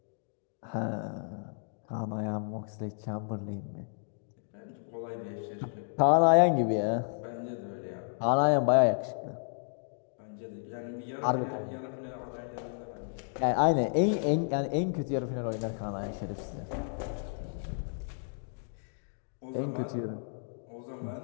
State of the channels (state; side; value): silent; right; digital silence